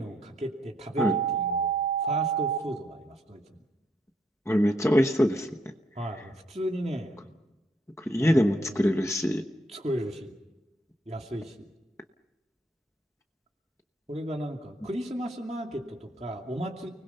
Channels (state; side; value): normal; both; correlation 0.73